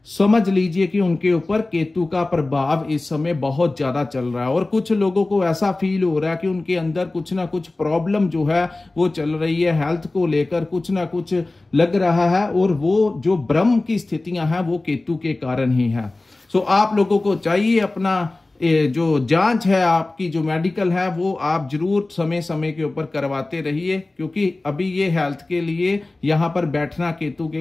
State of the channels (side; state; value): right; quieter; 3.0 dB